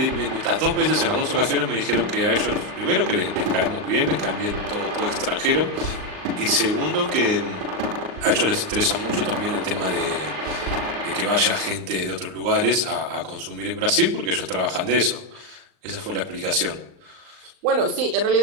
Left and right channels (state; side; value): late; left; 38 ms